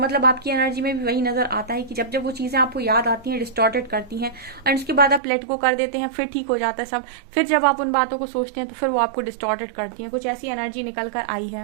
आपकी एनर्जी में भी वही नजर आता है कि जब वो चीजें आपको याद आती हैं, डिस्टॉर्टेड करती हैं, और उसके बाद आप लेट गो कर देते हैं, फिर ठीक हो जाता है सब। फिर जब आप उन बातों को सोचते हैं तो फिर वो आपको डिस्टॉर्टेड करती हैं। कुछ ऐसी एनर्जी निकल कर आई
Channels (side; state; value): left; drops out; at 5.2 s